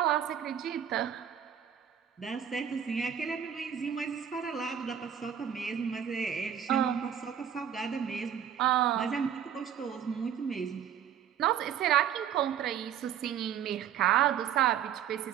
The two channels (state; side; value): quieter; left; 9.1 dB